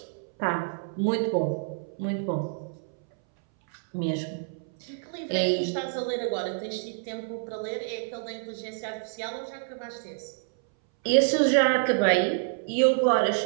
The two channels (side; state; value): left; silent; 60 dB below the other